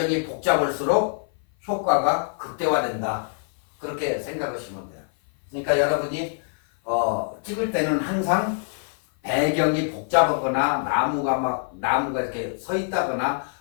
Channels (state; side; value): silent; right; 56 dB below the other